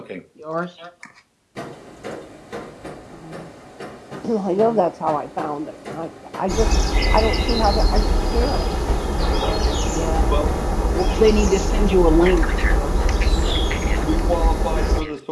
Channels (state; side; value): identical; both; correlation 1.00